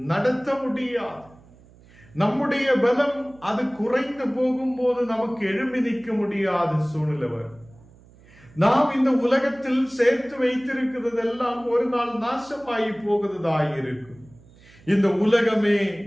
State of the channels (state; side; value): noise; right; hum, 26 dB below the sound